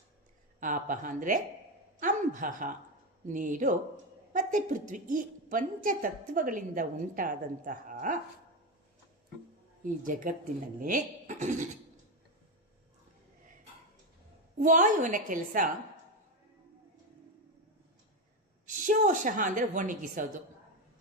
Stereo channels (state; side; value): normal; both; correlation 0.12